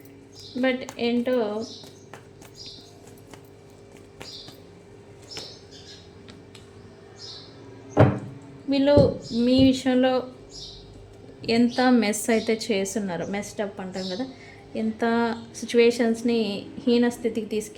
బట్ ఏంటో వీళ్ళు మీ విషయంలో ఎంత మెస్ అయితే చేస్తున్నారు, మెస్టప్ అంటాం కదా, ఎంత సిచ్యువేషన్స్ని హీన స్థితికి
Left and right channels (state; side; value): identical; both; correlation 1.00